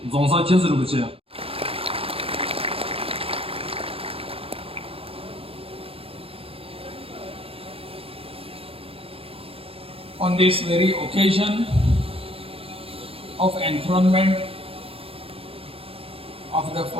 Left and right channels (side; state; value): left; late; 0.27 ms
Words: 总사牵쓰는 不去 On this very occasion of enthronement of the